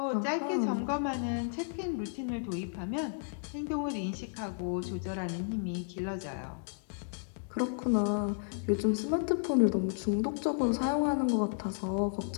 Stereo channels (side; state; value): right; silent; digital silence